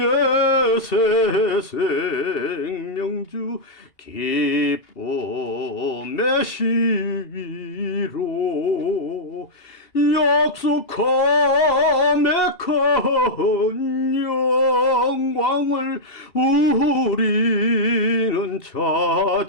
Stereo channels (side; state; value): right; late; 2.7 ms